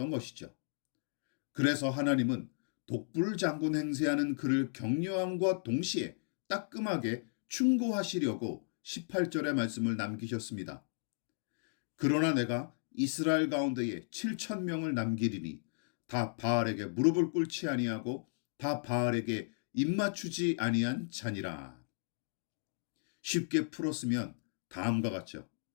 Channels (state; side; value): silent; right; digital silence